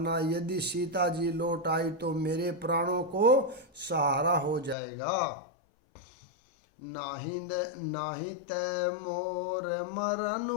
यदि सीता जी लौट आई तो मेरे प्राणों को सहारा हो जाएगा। नाही तै मोर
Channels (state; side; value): drops out; right; at 4.8 s